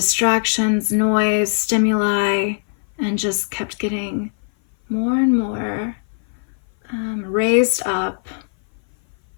noise, stimuli, and just kept getting more and more raised up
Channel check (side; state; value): right; silent; 58 dB below the other